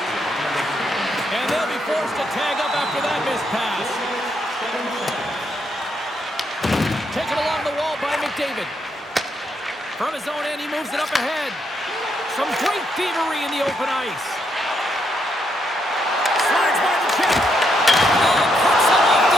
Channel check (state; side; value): normal; both; correlation 0.77